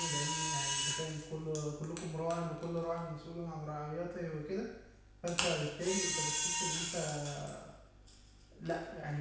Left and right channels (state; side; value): identical; both; correlation 1.00